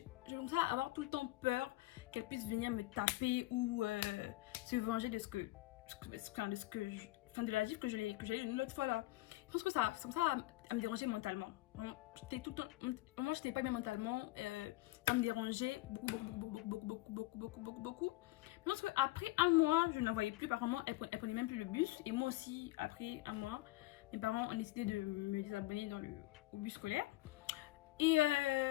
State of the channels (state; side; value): quieter; right; 19.2 dB